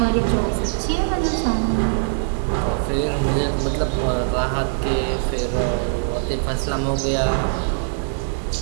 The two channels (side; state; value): left; silent; 64 dB below the other